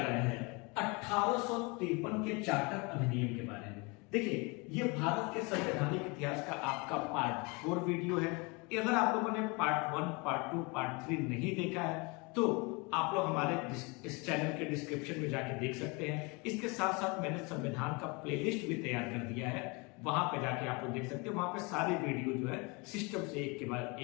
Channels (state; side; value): quieter; right; 28.6 dB